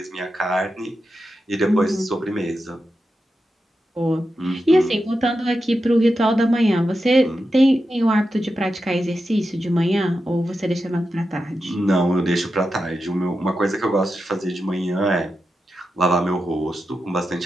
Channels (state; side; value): normal; both; correlation 0.89